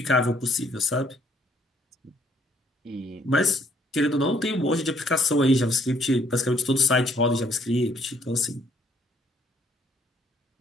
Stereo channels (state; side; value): normal; both; correlation 0.66